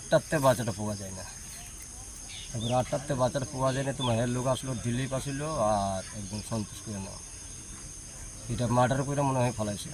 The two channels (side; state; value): both; identical; correlation 1.00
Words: বাচ্চাটা পাওয়া যায় না। তারপরে 8টাতে বাচ্চাটা পাওয়া যায় না, তোমার লোক আসলো দিল্লিপ আসলো আর একদম সন্তোষ করে নাও এটা মার্ডার করে মনে হয় ফলাইছে।